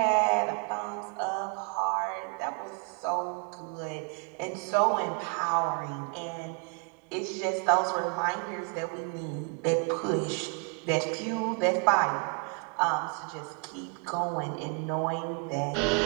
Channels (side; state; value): left; quieter; 37.2 dB